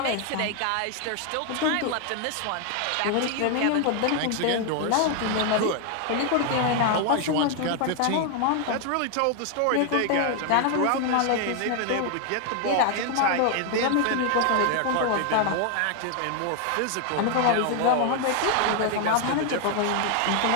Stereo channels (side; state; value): both; different; correlation 0.00